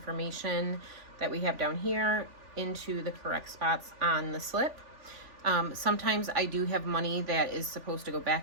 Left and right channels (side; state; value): left; late; 3.4 ms